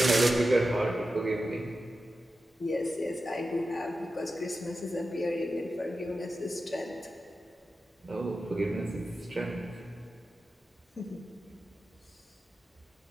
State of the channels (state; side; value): normal; both; correlation 0.92